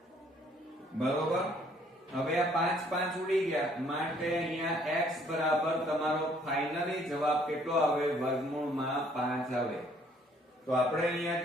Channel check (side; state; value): both; normal; correlation 0.62